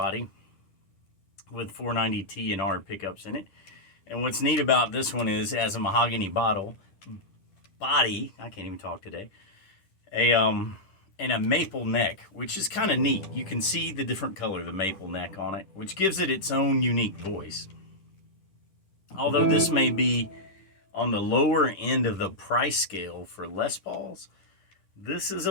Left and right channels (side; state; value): right; late; 10 ms